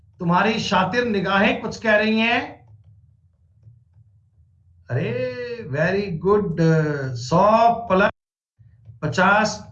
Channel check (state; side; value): identical; both; correlation 1.00